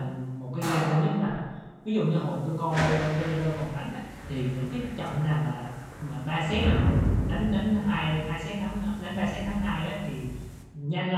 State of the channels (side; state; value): both; identical; correlation 1.00